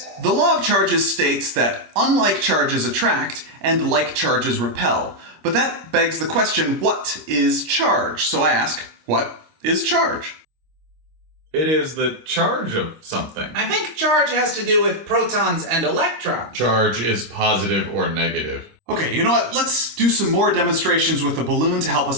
The law of charges states that unlike charges attract and like charges repel. But that begs the question, what is charge? So I ask, what is charge? It is the charge of something. I think charge has to do with protons and electrons. Charge is positive or negative. Okay, you know what? Let's do some more demonstrations with the balloon to help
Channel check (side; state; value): left; late; 26 ms